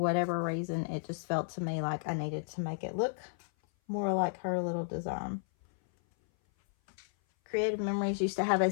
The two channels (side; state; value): right; silent; 56 dB below the other